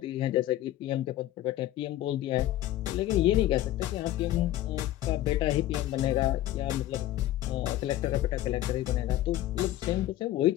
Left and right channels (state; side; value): quieter; right; 14.3 dB